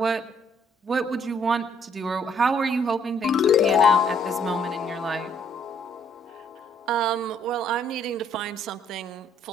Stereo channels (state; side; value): normal; both; correlation 0.65